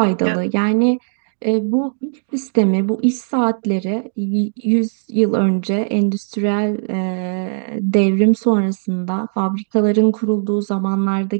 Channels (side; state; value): left; silent; digital silence